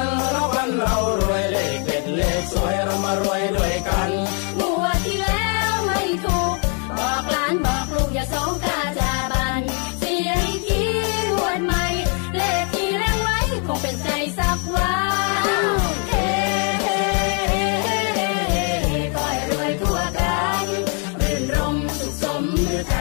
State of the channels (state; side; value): quieter; right; 39.6 dB